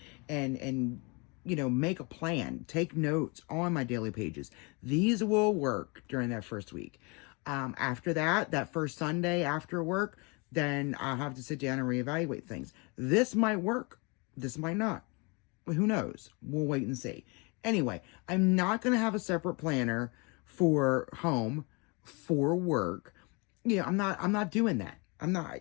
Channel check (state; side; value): quieter; right; 30.2 dB